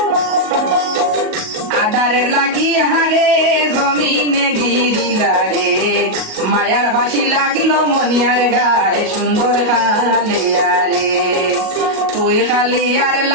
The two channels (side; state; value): left; late; 38 ms